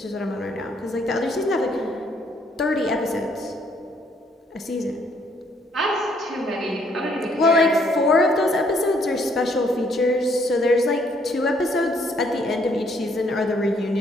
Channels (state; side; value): normal; both; correlation 0.67